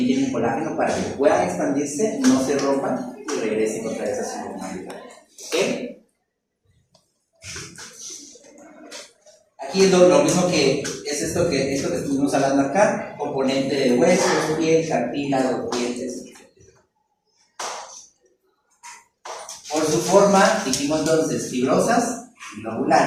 tienen colágeno para que puedan expandirse, no se rompan y regresen otra vez a su normalidad. ¿Okay? Aquí es lo mismo que es esto que estuvimos hablando acá: componente de huesos, piel, cartílago, dientes, etc. Por su forma, dijimos entonces fibrosas y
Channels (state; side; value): identical; both; correlation 1.00